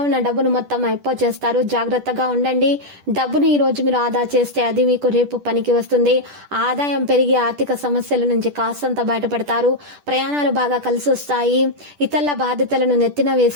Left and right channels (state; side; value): late; left; 10 ms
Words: ఉన్న డబ్బును మొత్తం అయిపో చేస్తారు. జాగ్రత్తగా ఉండండి. డబ్బును ఈ రోజు మీరు ఆదా చేస్తే అది మీకు రేపు పనికి వస్తుంది. ఆదాయం పెరిగి ఆర్థిక సమస్యల నుంచి కాస్తంత బయటపడతారు. ప్రయాణాలు బాగా కలిసి వస్తాయి. ఇతరుల బాధ్యతలను నెత్తిన